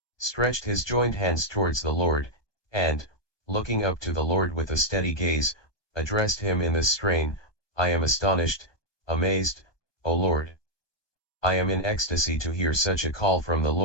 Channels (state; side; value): late; right; 1.2 ms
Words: stretched his joined hands towards the Lord, and, looking up to the Lord with a steady gaze, addressed him in this strain: I am astonished, amazed, O Lord. I am in ecstasy to hear such a call from the